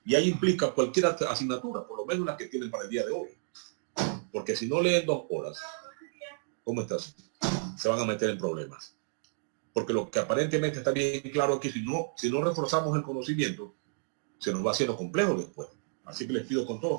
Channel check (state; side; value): silent; left; digital silence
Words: Y ahí implica cualquier asignatura, por lo menos la que tienen para el día de hoy. Porque si no leen 2 horas, ¿cómo estás? Se van a meter en problemas. Porque lo que aparentemente está bien claro aquí, si no reforzamos el conocimiento, se nos va haciendo complejo después. Así que les pido con todo